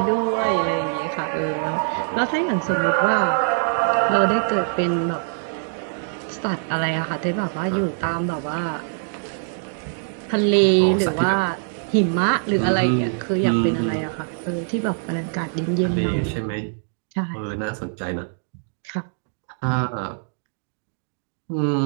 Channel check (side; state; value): left; silent; digital silence